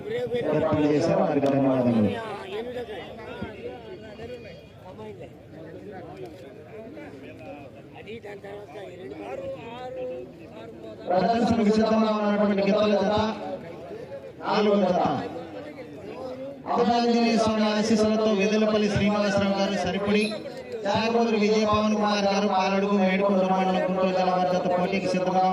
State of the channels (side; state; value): both; identical; correlation 1.00